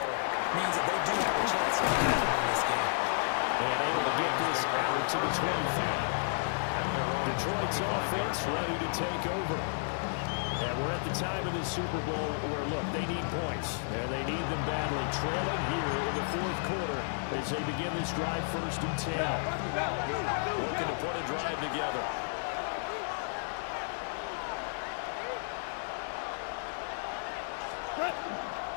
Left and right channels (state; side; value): silent; right; digital silence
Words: means that they do have a chance to win this game. And able to get this out to the 25. Detroit's offense ready to take over. And we're at the time of this Super Bowl where, look, they need points. And they need them badly. Trailing here in the 4th quarter as they begin this drive 1st and 10. Looking to put a drive together.